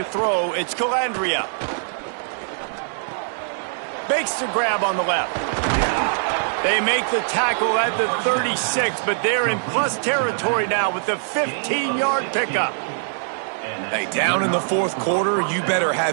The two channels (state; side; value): silent; left; digital silence